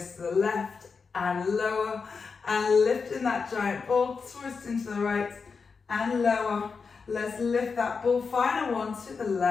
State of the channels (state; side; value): quieter; right; 5.1 dB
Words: the left and lower, and lifting that giant ball, twist into the right and lower. Let's lift that ball, final one to the